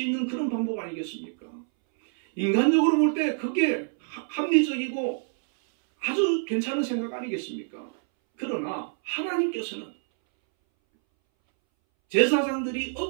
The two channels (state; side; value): silent; left; 61 dB below the other